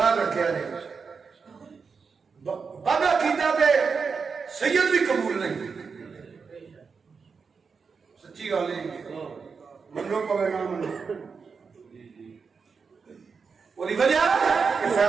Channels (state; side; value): quieter; left; 5.4 dB